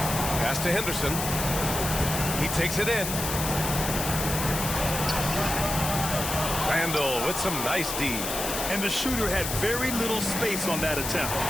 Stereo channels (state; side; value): noise; left; hiss, 4 dB below the sound